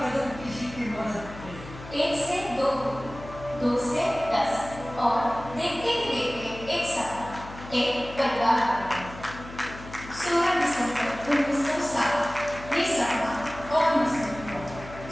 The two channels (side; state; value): left; noise; hum, 15 dB below the sound